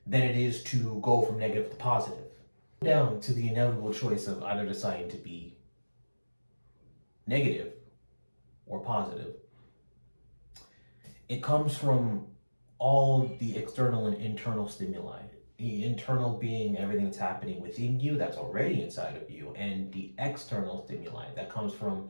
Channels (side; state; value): both; inverted; correlation -1.00